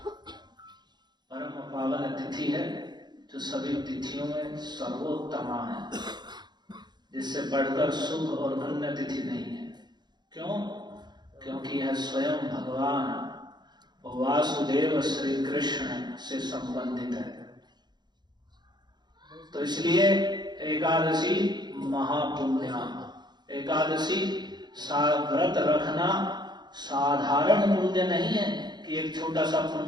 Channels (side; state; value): left; late; 0.21 ms